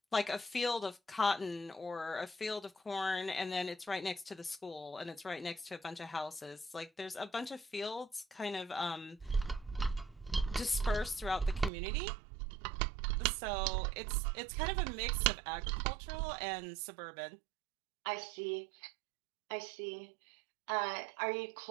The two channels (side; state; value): left; drops out; at 11.7 s